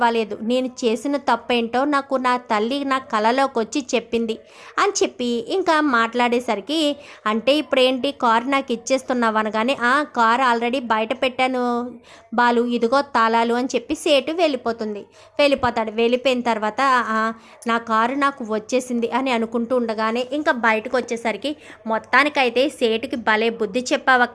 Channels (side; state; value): both; identical; correlation 1.00